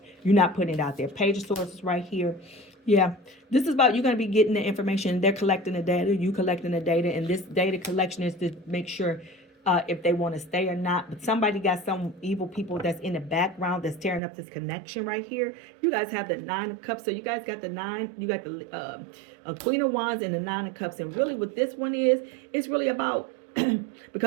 You're not putting it out there. Page of Swords is right here. Yeah, this is about, you're going to be getting the information. They're collecting the data, you collecting the data, and this data collection is to make sure if they want to stay or not. But somebody got some evil people that's in the background that's tearing up this connection right here. You guys have the Nine of Cups, so you guys got the nine, you got the Queen of Wands and the Nine of Cups. And really what this one is, it's really about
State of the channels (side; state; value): left; drops out; at 14.2 s